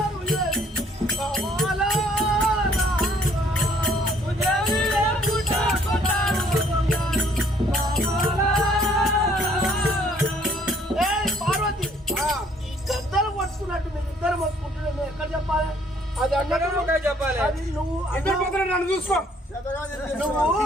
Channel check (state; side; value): normal; both; correlation 0.61